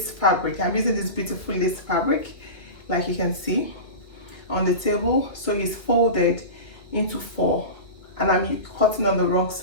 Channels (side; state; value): right; late; 2.2 ms